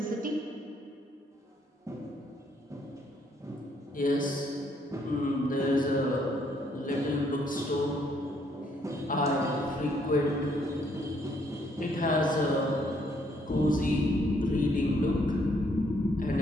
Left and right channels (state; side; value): normal; both; correlation 0.69